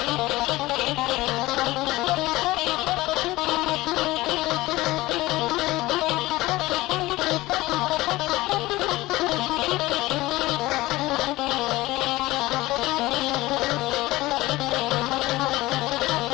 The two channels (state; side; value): quieter; right; 18.9 dB